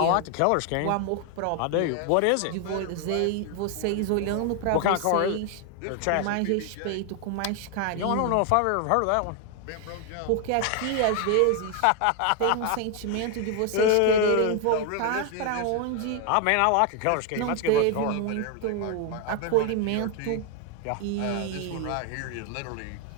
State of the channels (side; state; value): both; different; correlation 0.01